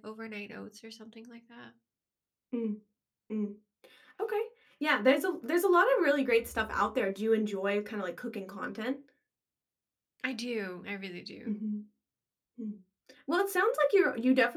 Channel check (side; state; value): both; identical; correlation 1.00